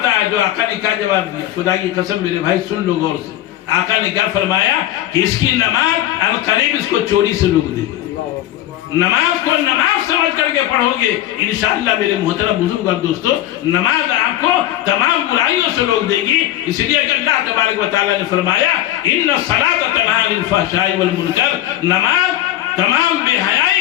ہے۔ جو آقا نے کیا جواب دیا؟ خدا کی قسم میرے بھائی سن لو غور سے، آقا نے کیا فرمایا کہ اس کی نماز القریب اس کو چوری سے روک دے گی۔ نماز کو نماز سمجھ کر کے پڑھو گے انشاءاللہ میرے محترم بزرگ اور دوستو، نماز آپ کو تمام برائیوں سے روک دے گی۔ اس لیے کہ اللہ تبارک و تعالیٰ نے فرمایا ان الصلاۃ تنہی عن الفحشاء والمنکر، نماز تمام بے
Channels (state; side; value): quieter; right; 13.4 dB